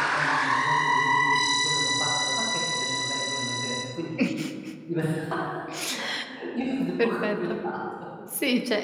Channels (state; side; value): identical; both; correlation 1.00